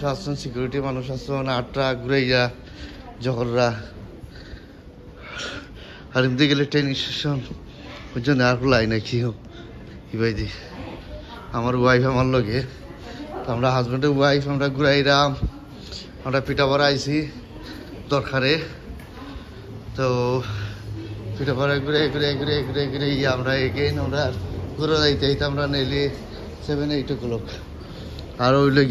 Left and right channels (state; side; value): identical; both; correlation 1.00